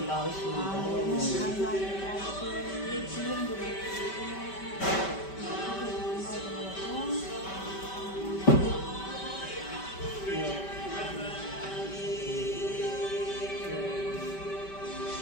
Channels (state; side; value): late; right; 5.2 ms